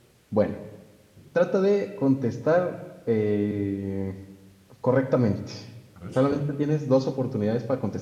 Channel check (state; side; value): identical; both; correlation 1.00